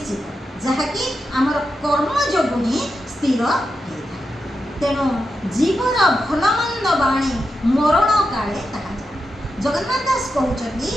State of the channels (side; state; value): both; normal; correlation 0.88